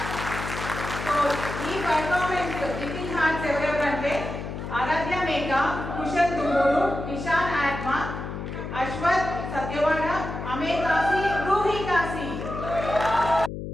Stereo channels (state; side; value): noise; left; hum, 7 dB below the sound